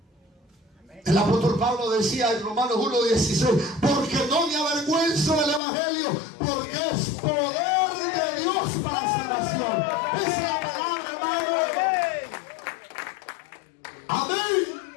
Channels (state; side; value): drops out; right; at 5.6 s